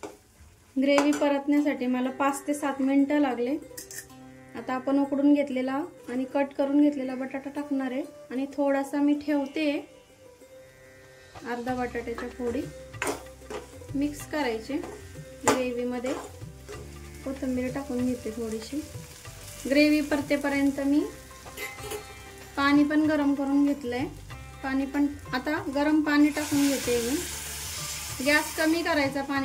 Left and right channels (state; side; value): identical; both; correlation 1.00